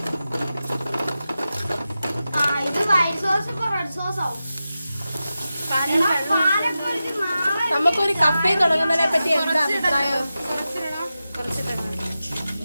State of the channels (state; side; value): inverted; both; correlation -0.93